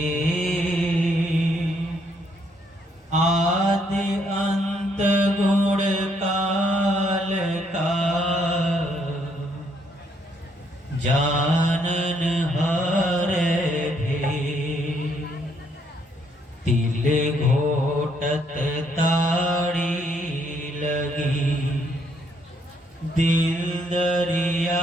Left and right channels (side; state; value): both; normal; correlation 0.71